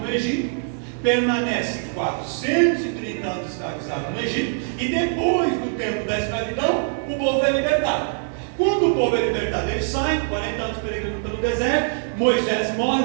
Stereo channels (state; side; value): silent; left; digital silence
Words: Egito, permanece 430 anos escravizado no Egito, e depois do tempo da escravidão, o povo é libertado. Quando o povo é libertado, eles saem, 40 anos peregrinando pelo deserto, Moisés